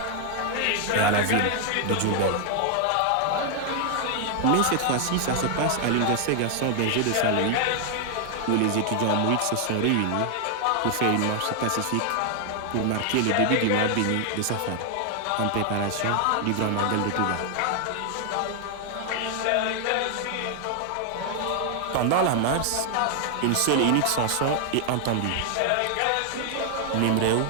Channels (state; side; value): different; both; correlation 0.00